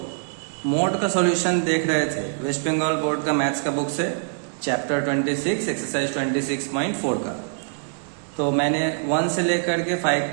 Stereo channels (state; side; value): silent; left; digital silence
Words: mode का सॉल्यूशन देख रहे थे वेस्ट बंगाल बोर्ड का मैथ्स का बुक से चैप्टर 26 एक्सरसाइज 26.4 का। तो मैंने 1 से लेकर के 5